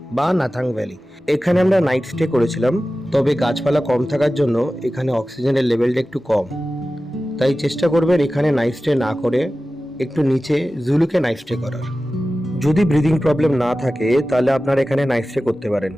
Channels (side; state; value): both; normal; correlation 0.95